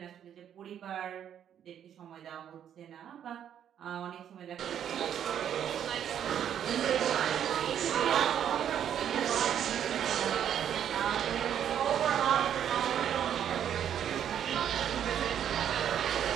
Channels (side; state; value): left; quieter; 9.5 dB